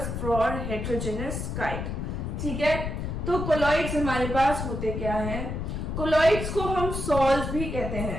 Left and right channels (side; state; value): left; noise; rumble, 4 dB below the sound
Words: for heterogeneous kind. ठीक है, तो कोलॉइड्स हमारे पास होते क्या हैं? कोलॉइड्स को हम सॉल्व्स भी कहते